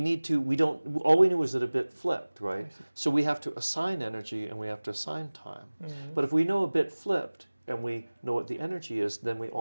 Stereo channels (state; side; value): inverted; both; correlation -1.00